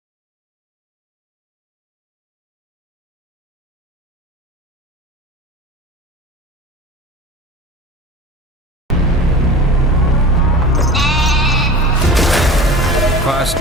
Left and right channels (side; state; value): both; normal; correlation 0.35